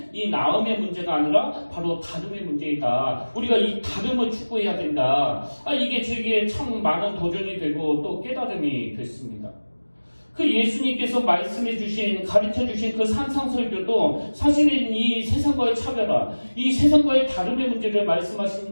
이 나음의 문제가 아니라 바로 다름의 문제이다. 우리가 이 다름을 추구해야 된다. 이게 저에게 참 많은 도전이 되고 또 깨달음이 됐습니다. 그 예수님께서 말씀해 주신, 가르쳐 주신 그 산상설교도 사실은 이 세상과의 차별화, 이 세상과의 다름의 문제를 말씀하시는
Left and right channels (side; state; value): both; inverted; correlation -1.00